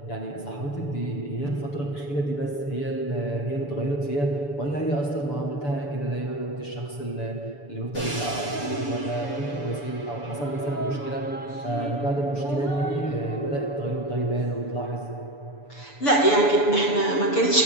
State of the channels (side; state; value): right; late; 6.9 ms